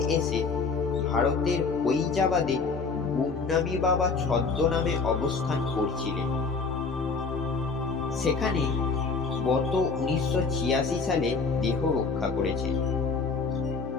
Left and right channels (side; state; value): right; quieter; 4.6 dB